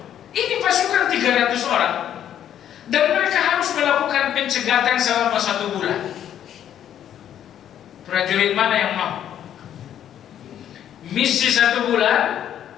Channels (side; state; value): right; quieter; 10.3 dB